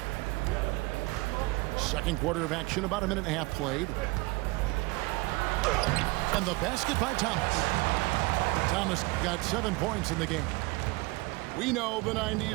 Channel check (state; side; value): quieter; left; 24.4 dB